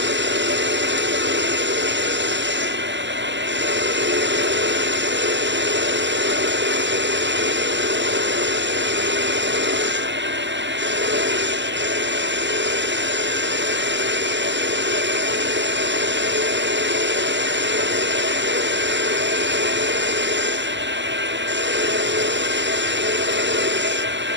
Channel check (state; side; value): late; left; 0.53 ms